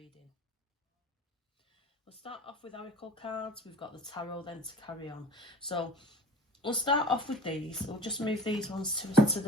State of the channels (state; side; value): normal; both; correlation 0.42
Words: We'll start off with oracle cards. We've got the tarot then to carry on. So we'll start off with these. We'll just move these ones to